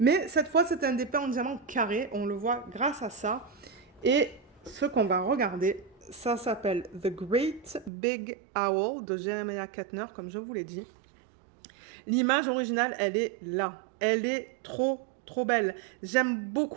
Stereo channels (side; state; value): left; drops out; at 7.9 s